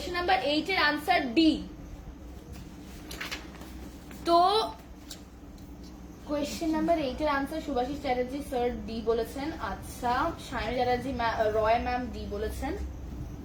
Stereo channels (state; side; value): identical; both; correlation 1.00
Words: নাম্বার 8 এর আনসার ডি। তো কোয়েশ্চেন নাম্বার 8 এর answer Subhashis Chatterjee sir D বলেছেন। আচ্ছা, সায়নী চ্যাটার্জি রয় ম্যাম ডি বলেছেন।